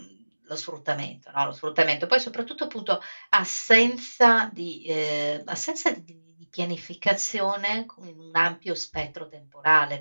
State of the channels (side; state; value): both; inverted; correlation -1.00